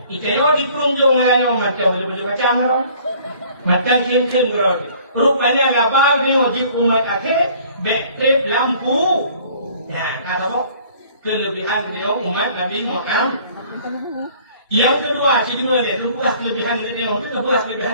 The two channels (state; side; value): inverted; both; correlation -0.54